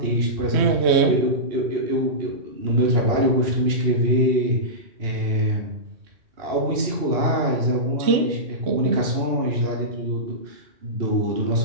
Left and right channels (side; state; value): left; late; 2.8 ms